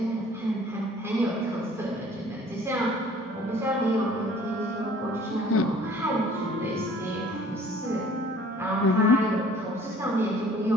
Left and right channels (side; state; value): both; normal; correlation 0.53